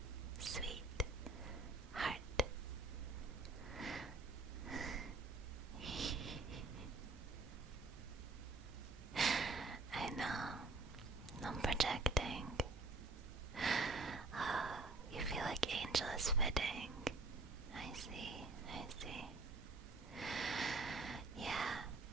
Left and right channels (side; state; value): left; quieter; 3.5 dB